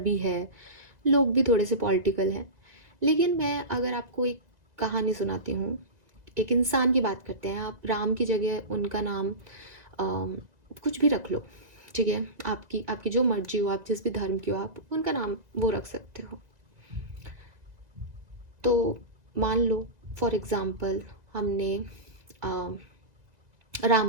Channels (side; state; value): left; late; 2.0 ms